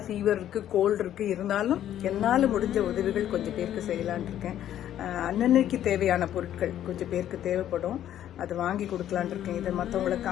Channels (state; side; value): quieter; right; 11.4 dB